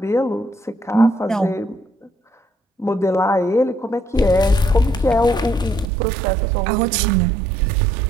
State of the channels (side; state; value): left; drops out; at 5.9 s